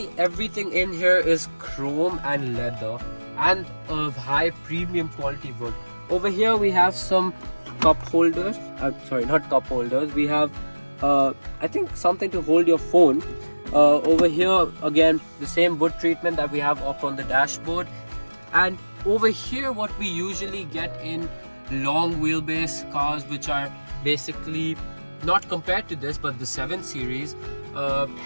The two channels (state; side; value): inverted; both; correlation -1.00